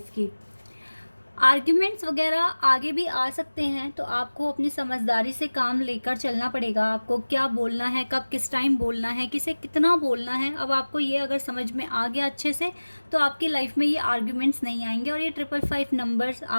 की। आर्ग्यूमेंट्स वगैरह आगे भी आ सकते हैं, तो आपको अपनी समझदारी से काम लेकर चलना पड़ेगा। आपको क्या बोलना है, कब किस टाइम बोलना है, किसे कितना बोलना है, अब आपको ये अगर समझ में आ गया अच्छे से तो आपकी लाइफ में ये आर्ग्यूमेंट्स नहीं आएंगे और ये 555 नंबर्स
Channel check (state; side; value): inverted; both; correlation -1.00